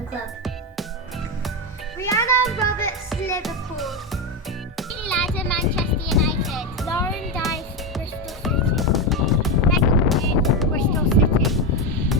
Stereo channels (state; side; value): normal; both; correlation 0.11